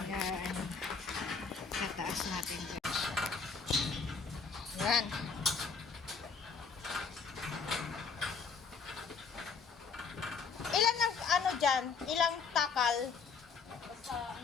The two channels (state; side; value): quieter; right; 5.4 dB